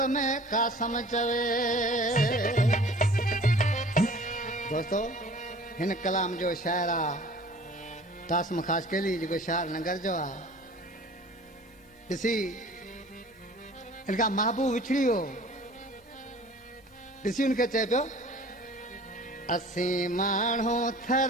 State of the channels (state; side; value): normal; both; correlation 0.46